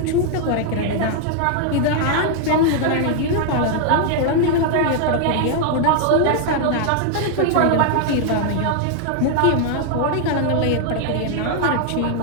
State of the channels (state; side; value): different; both; correlation 0.00